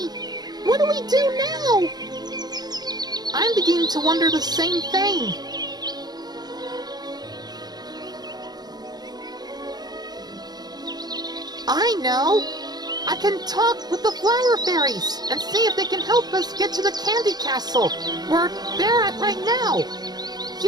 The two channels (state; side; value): late; left; 0.19 ms